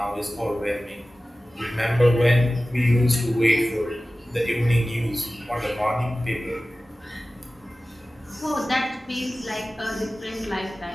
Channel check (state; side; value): normal; both; correlation 0.96